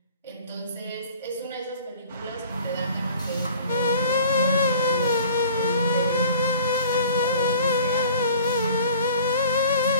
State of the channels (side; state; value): both; inverted; correlation -0.47